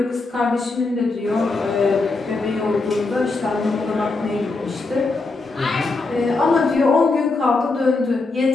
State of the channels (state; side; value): quieter; right; 3.6 dB